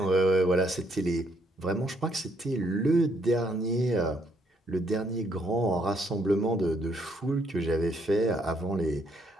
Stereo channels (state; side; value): normal; both; correlation 0.71